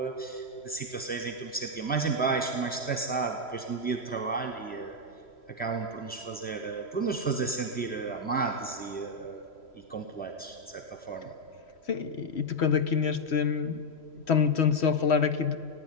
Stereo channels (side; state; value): right; late; 3.1 ms